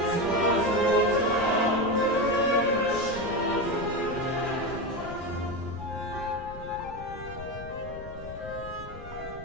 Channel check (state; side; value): noise; left; rumble, 13 dB below the sound